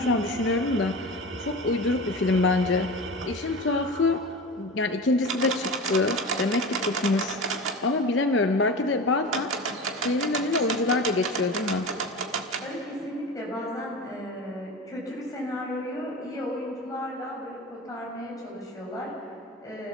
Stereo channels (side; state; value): both; normal; correlation 0.30